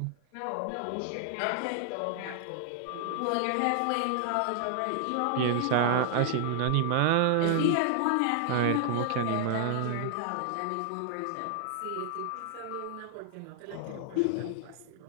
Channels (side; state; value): both; different; correlation -0.01